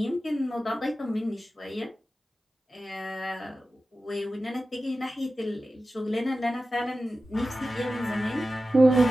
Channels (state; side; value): normal; both; correlation 0.94